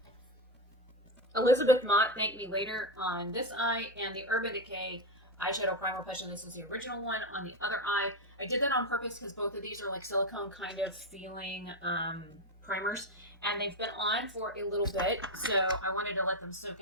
Elizabeth Mott Thank Me Later on this eye and the Urban Decay eyeshadow primer push, and this is the original one on the other eye. I did that on purpose because both of these are like silicone kind of feeling primers, and they've been on for a little bit, so I wanted to let them soak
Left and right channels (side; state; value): both; normal; correlation 0.10